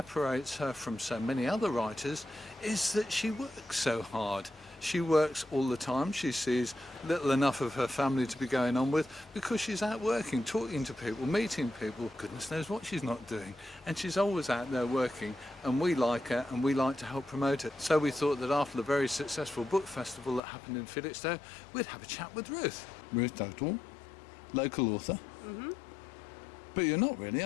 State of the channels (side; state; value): right; drops out; at 20.4 s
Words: her from so many other writers is that she works so hard. She works all the time. She sees little enough of her family to be going on with because she's out working, talking to people, meeting people. Goodness knows what she's not doing. And she's always out there working, and we like her and we like to help promote it. So we thought that after the very successful book festival that happened in Felixstowe, we'd have a chat with Ruth. Ruth Dugdall, local author. Mm-hmm. But you're not really,